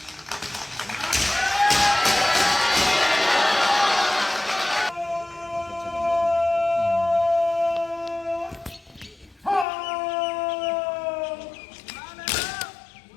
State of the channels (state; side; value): drops out; right; at 9.7 s